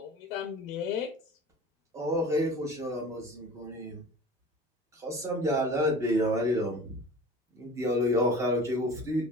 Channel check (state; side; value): normal; both; correlation 0.40